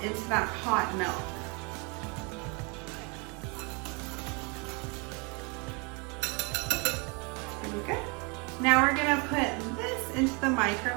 into that hot milk. Pretty good. Now we're going to put this into the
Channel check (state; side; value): quieter; left; 31.8 dB